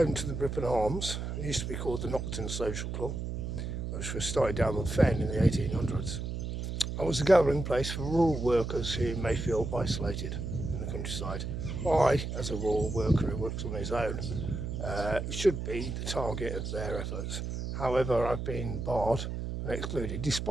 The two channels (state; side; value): noise; right; hum, 4 dB below the sound